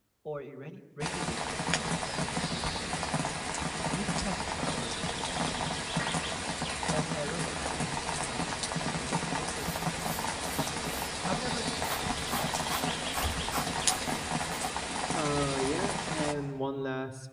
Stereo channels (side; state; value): both; identical; correlation 1.00